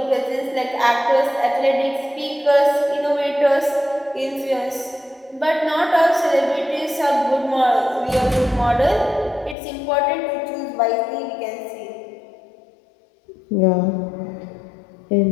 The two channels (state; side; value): drops out; right; at 9.6 s